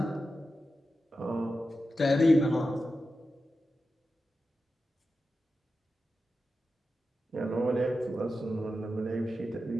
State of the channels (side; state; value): both; normal; correlation 0.91